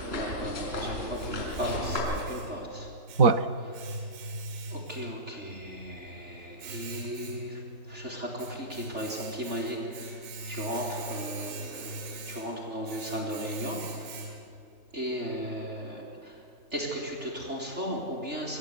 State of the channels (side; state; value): left; late; 3.4 ms